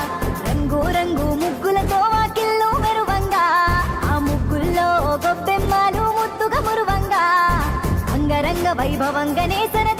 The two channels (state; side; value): identical; both; correlation 1.00